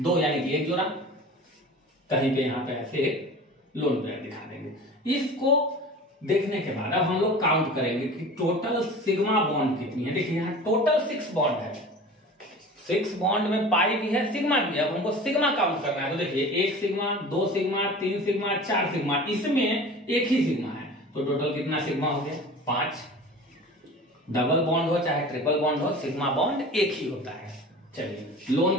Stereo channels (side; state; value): both; normal; correlation 0.38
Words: यानी कि 1 जोड़ा। कहीं पे यहां पे ऐसे लोन पेयर दिखा देंगे। इसको देखने के बाद अब हम लोग काउंट करेंगे कि टोटल सिग्मा बॉन्ड कितनी है। देखिए यहाँ टोटल 6 बॉन्ड है, 6 बॉन्ड में पाई भी है, सिग्मा भी है। अब हमको सिग्मा काउंट करना है, तो देखिए 1 सिग्मा, 2 सिग्मा, 3 सिग्मा, 4 सिग्मा, इसमें एक ही सिग्मा है, तो टोटल कितना सिग्मा हो गया? 5। डबल बॉन्ड हो चाहे ट्रिपल बॉन्ड हो, सिग्मा बॉन्ड एक ही होता है। चलिए